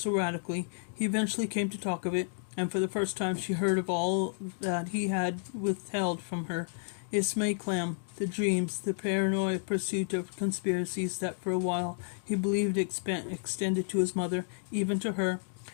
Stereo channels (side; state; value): right; silent; digital silence